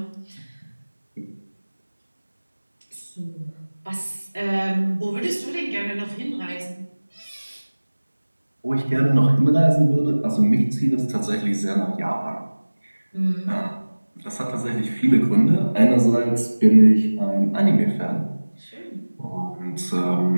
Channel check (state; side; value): inverted; both; correlation -1.00